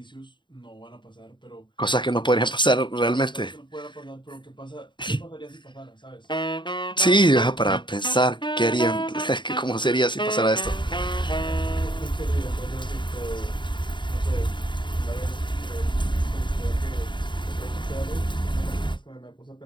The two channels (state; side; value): late; right; 0.23 ms